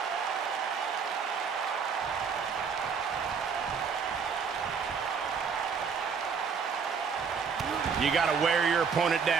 You got to wear your opponent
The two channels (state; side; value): quieter; left; 6.0 dB